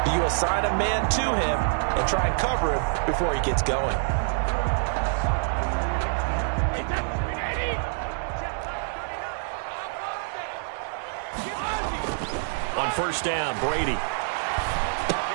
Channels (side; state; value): left; silent; digital silence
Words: do you assign a man to him and try and cover him before he gets going? On first down, Brady.